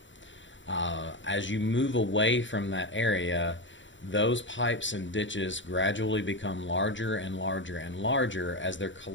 As you move away from that area, those pipes and ditches gradually become larger and larger and larger as they're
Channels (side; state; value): right; late; 0.55 ms